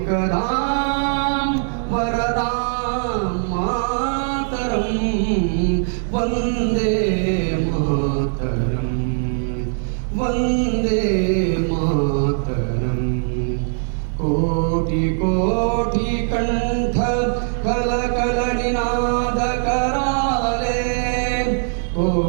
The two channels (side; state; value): left; silent; digital silence